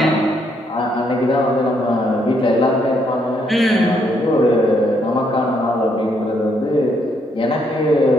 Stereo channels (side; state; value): both; normal; correlation 0.73